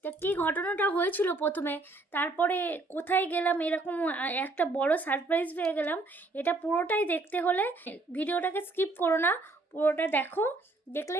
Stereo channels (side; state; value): left; quieter; 3.1 dB